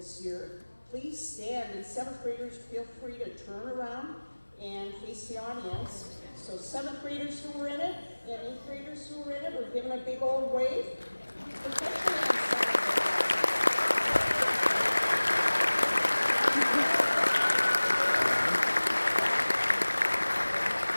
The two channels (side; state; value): both; inverted; correlation -1.00